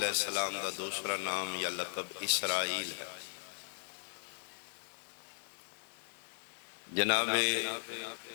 السلام دا دوسرا نام یا لقب اسرائیل ہے جناب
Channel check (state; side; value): silent; right; 53 dB below the other